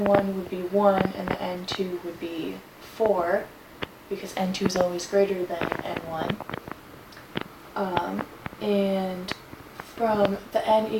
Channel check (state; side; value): identical; both; correlation 1.00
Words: would be 1 and the n2 would be 4, because n2 is always greater than n1. And from the n